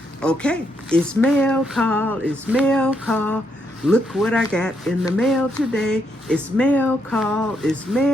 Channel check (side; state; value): both; normal; correlation 0.77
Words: Okay, it's mail call. It's mail call. Look what I got in the mail today. It's mail call. It's